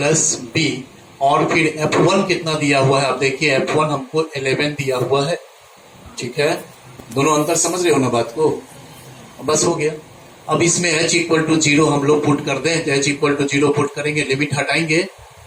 b, और फिर f1 कितना दिया हुआ है, आप देखिए f1 हमको 11 दिया हुआ है। ठीक है, दोनों अंतर समझ रहे हो ना बात को, बस हो गया। अब इसमें h इक्वल टू 0 हम लोग पुट कर दें, तो h इक्वल टू 0 पुट करेंगे, लिमिट हटाएंगे,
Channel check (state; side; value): identical; both; correlation 1.00